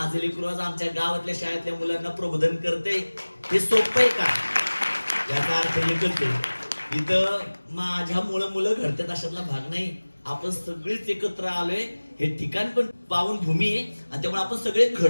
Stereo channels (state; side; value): inverted; both; correlation -1.00